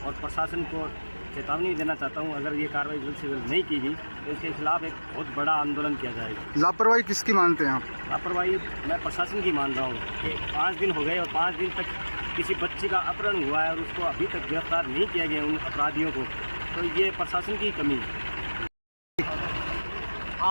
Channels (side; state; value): both; inverted; correlation -1.00